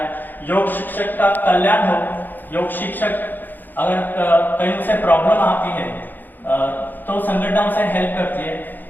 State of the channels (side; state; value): right; late; 0.088 ms